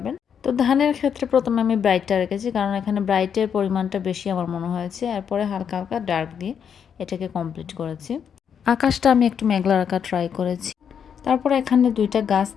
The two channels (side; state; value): right; quieter; 7.6 dB